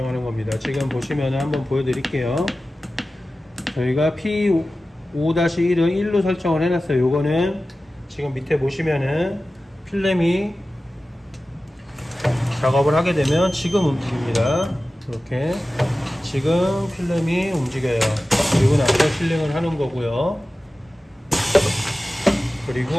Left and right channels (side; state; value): both; normal; correlation 0.95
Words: 겁니다. 지금 보시면 한번 보여드릴게요. 저희가 P5-1은 1로 설정을 해놨어요. 요거는 지금 밑에 보시면은 필름이 작업을 하게 되면 지금 움직입니다. 이렇게 지금 필름이 움직여요. 그리고 나서 실링을 하는 거고요.